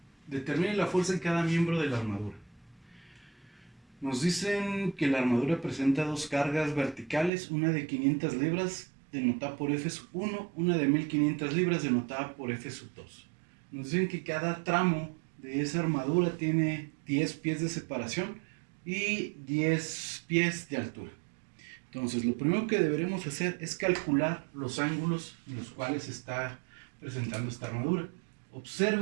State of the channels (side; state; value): left; drops out; at 7.3 s